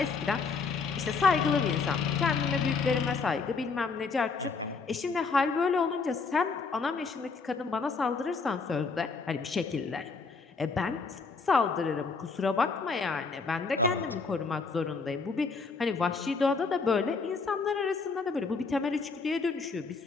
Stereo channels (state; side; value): quieter; right; 4.6 dB